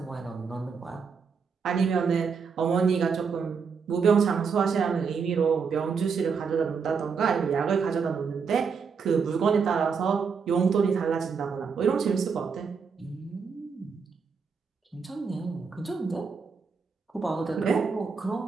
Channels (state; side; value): quieter; left; 5.7 dB